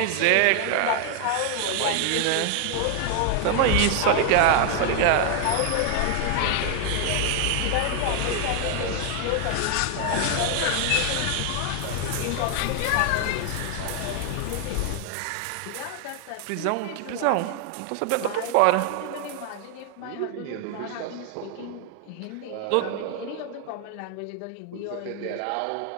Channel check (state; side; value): different; both; correlation 0.00